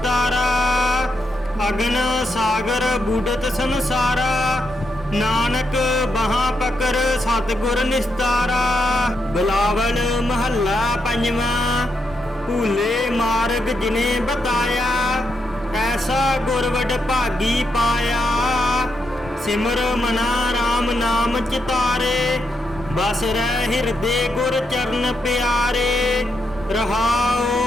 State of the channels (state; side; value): normal; both; correlation 0.82